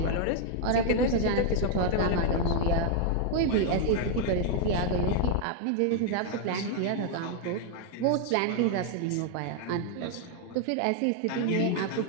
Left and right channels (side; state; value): both; different; correlation 0.00